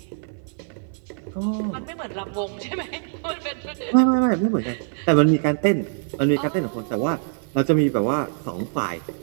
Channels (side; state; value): left; silent; 58 dB below the other